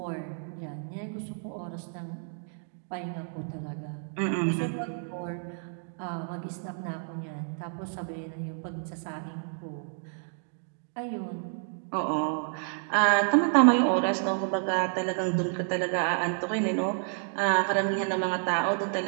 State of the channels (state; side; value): silent; left; 58 dB below the other